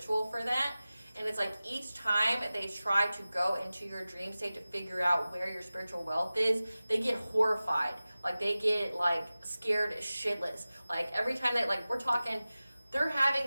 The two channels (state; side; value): inverted; both; correlation -0.96